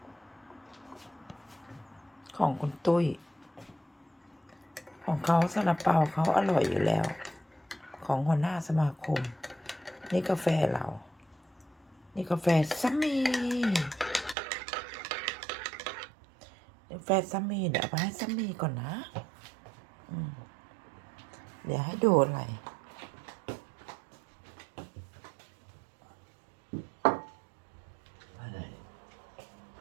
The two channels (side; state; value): left; drops out; at 14.4 s